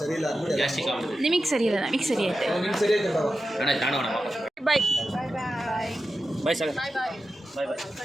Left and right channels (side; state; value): both; normal; correlation 0.92